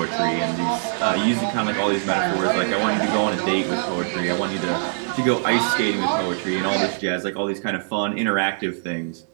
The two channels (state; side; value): silent; left; digital silence